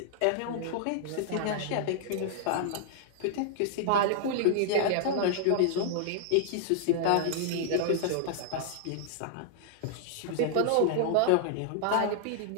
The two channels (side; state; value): both; different; correlation -0.01